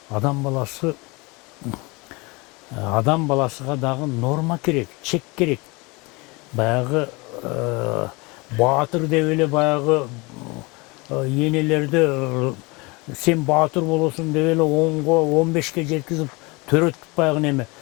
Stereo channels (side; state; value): right; quieter; 26.2 dB